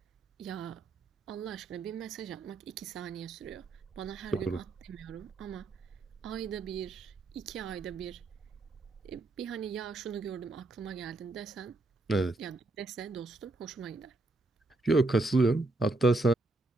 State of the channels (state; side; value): quieter; left; 3.1 dB